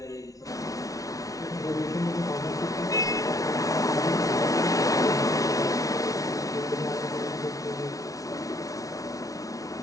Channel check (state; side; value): late; right; 0.17 ms